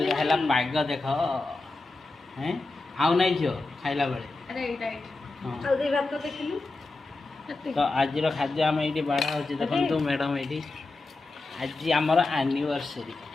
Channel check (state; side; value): quieter; right; 3.3 dB